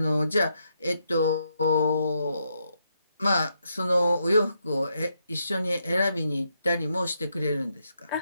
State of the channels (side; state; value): both; inverted; correlation -0.79